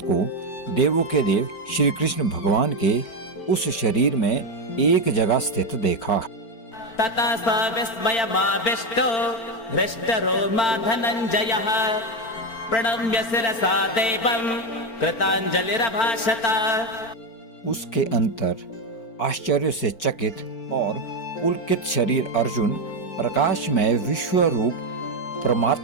को देवों के देव श्री कृष्ण भगवान के उस शरीर में एक जगह स्थित देखा। ततः स विस्मयमाविष्टो हृष्टरोमा धनञ्जयः प्रणम्य शिरसा देवं कृताञ्जलिरभाषत। उसके अंतर आश्चर्य से चकित और पुलकित शरीर अर्जुन प्रकाशमय विश्व रूप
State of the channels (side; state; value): right; late; 4.4 ms